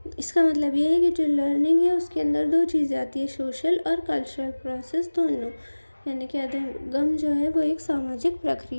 इसका मतलब ये है कि जो लर्निंग है उसके अंदर 2 चीज़ें आती है, सोशल और कल्चरल प्रोसेस दोनों, यानी कि अधिगम जो है वो एक सामाजिक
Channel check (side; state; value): both; inverted; correlation -1.00